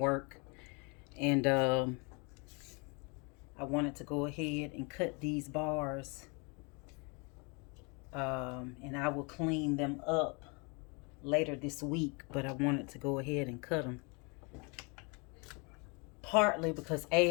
and I wanted to go ahead and cut these bars, and I will clean them up later this week. But I wanted to go ahead and cut them, partly because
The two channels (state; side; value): quieter; right; 31.9 dB